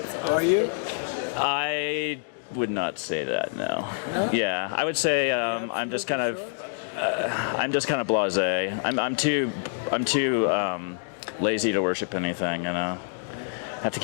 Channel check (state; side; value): silent; right; digital silence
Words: Are you? I would not say that, no. No? Yeah, I would say I'm just kind of... I'm just kind of blasé. I'm too lazy to worship anything, you know. Have to